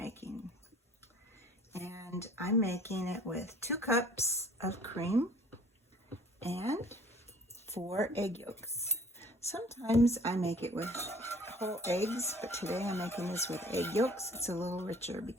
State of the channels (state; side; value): normal; both; correlation 0.51